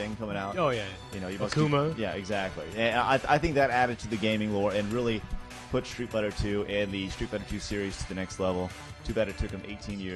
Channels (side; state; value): both; identical; correlation 1.00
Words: coming out. Oh, yeah. You know, you must Akuma. yeah, exactly. And I think that added to the gaming lore and really put Street Fighter 2 and the Street Fighter 2 series to the next level. Too bad it took them 18